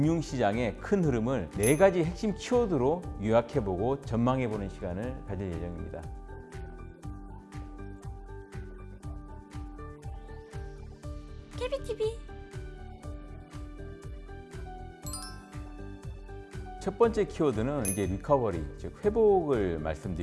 큰 흐름을 4가지 핵심 키워드로 요약해보고 전망해보는 시간을 가질 예정입니다. KBTV 첫 번째 키워드는 이제 리커버리, 즉 회복을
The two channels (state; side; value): identical; both; correlation 1.00